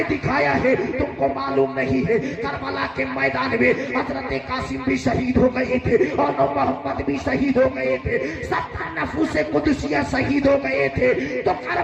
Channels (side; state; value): both; identical; correlation 1.00